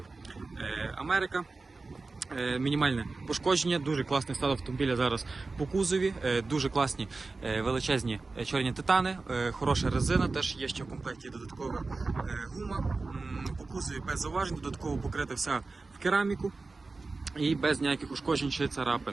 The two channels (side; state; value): left; quieter; 3.7 dB